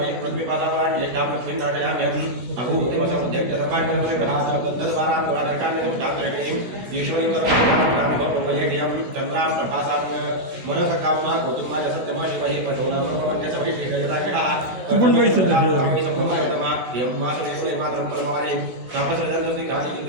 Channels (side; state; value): left; late; 16 ms